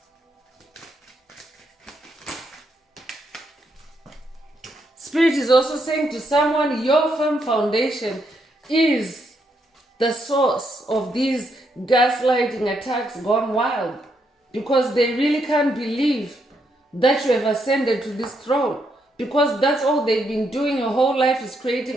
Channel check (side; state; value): both; normal; correlation 0.78